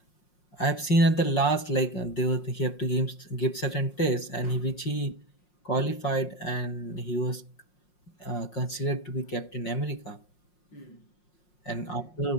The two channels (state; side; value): late; right; 5.6 ms